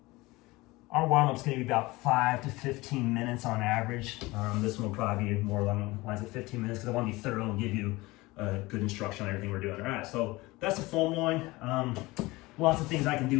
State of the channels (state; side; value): quieter; right; 21.2 dB